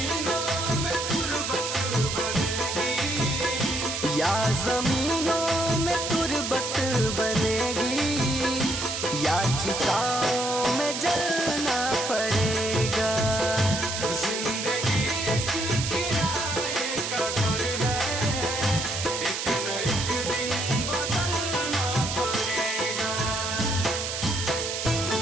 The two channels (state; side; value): noise; right; hiss, 3 dB below the sound